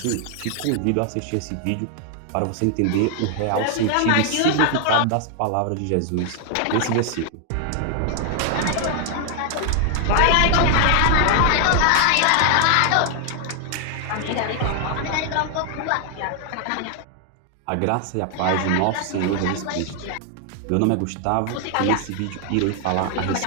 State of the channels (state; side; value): different; both; correlation 0.00